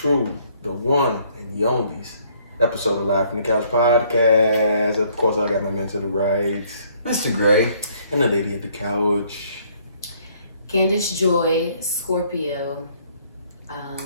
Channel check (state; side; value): inverted; both; correlation -0.63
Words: the one, and the onlys episode of Live from the Couch podcast. Of course, I got my man to the right, Mr. Gray. and the lady at the couch. Candice Joy, Scorpio,